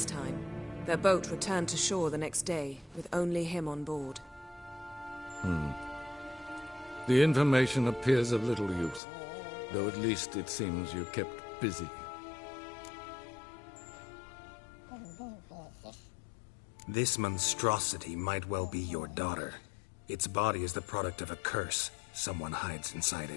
time. Their boat returned to shore the next day, with only him on board. The information appears of little use, though at least it seems you kept busy. This monstrosity might well be your daughter. Its body is the product of a curse. Someone hides inside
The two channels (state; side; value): drops out; right; at 9.0 s